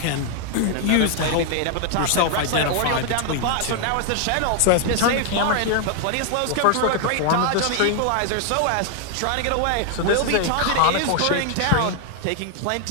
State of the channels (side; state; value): both; different; correlation 0.00